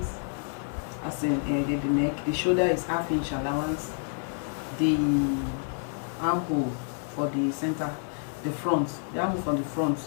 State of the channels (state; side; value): silent; right; 59 dB below the other